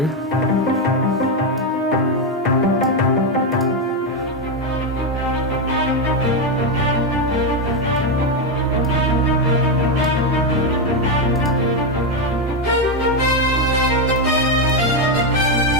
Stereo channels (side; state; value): both; normal; correlation 0.06